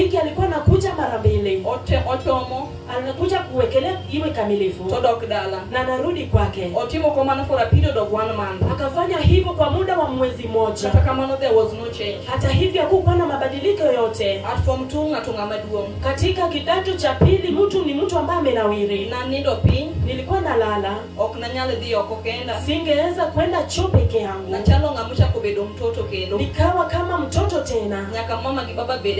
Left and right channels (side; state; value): both; identical; correlation 1.00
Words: alikuwa anakuja mara mbili. Otomo. Anakuja kuwekelea iwe kamilifu. Todok dala. Na narudi kwake. Otimo komano for a period of 1 month. Akafanya hivyo kwa muda wa mwezi mmoja. Hata kama there was no change. Hata hivyo hakukuwa na mabadiliko yoyote. At form 2 ngatunga maduong. Katika kidato cha pili mtu ni mtu ambaye amenawiri. Na nindo pin. Nilikuwa nalala. Oknanyale dhio kokenda. Singeweza kwenda choo peke yangu. Na chalo ngamusha kubedo mtoto kendo. Nikawa kama mtoto tena. Nyaka mama kibaba